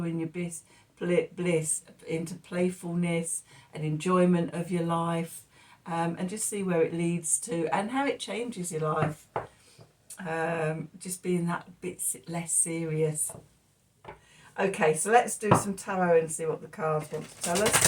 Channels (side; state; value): both; identical; correlation 1.00